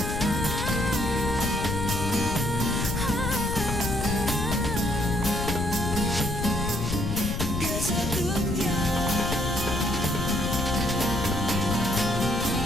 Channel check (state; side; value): noise; left; rumble, 3 dB below the sound